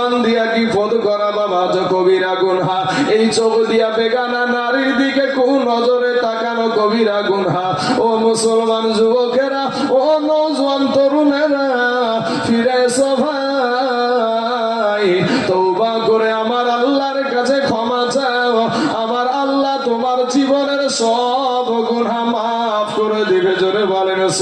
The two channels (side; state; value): both; identical; correlation 1.00